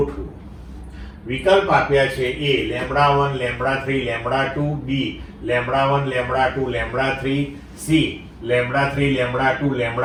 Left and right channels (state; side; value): identical; both; correlation 1.00